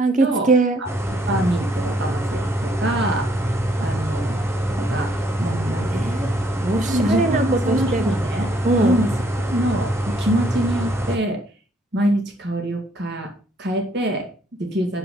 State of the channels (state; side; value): normal; both; correlation 0.67